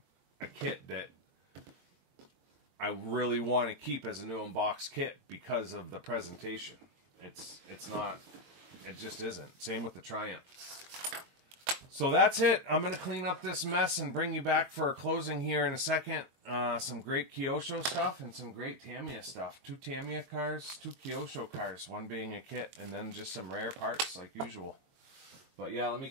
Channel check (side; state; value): left; late; 22 ms